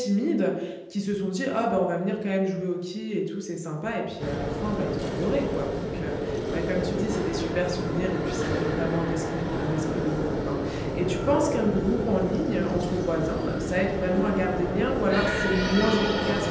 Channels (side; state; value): both; identical; correlation 1.00